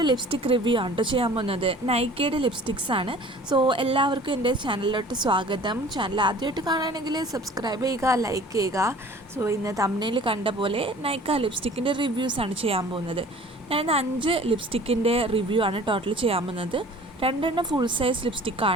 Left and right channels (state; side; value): normal; both; correlation 0.47